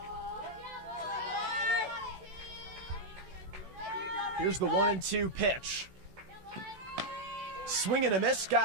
Here's the 1-2 pitch. Swing and a miss,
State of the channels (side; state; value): left; late; 16 ms